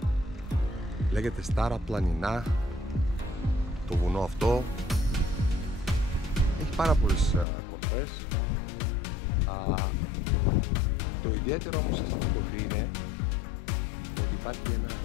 Λέγεται Στάρα Πλανινά το βουνό αυτό. Έχει πάρα πολλές κορφές. Το ιδιαίτερο όμως σε αυτή την κορφή είναι ότι υπάρχει ένα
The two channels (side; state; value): right; drops out; at 7.5 s